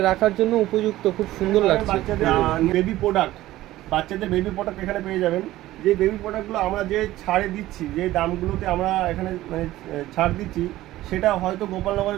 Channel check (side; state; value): left; quieter; 15.8 dB